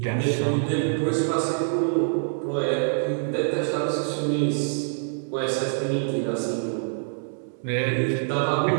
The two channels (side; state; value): left; silent; digital silence